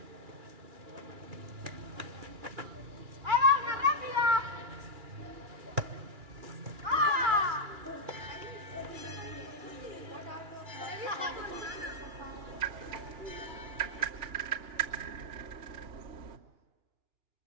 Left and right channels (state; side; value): late; left; 2.9 ms